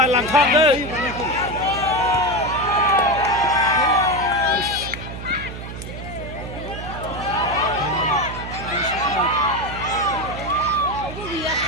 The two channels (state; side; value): noise; right; hum, 10 dB below the sound